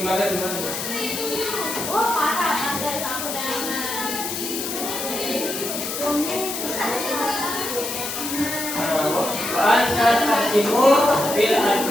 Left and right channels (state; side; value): noise; left; hiss, 5 dB below the sound